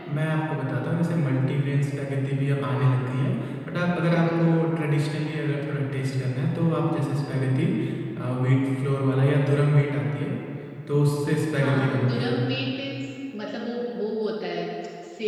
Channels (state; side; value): identical; both; correlation 1.00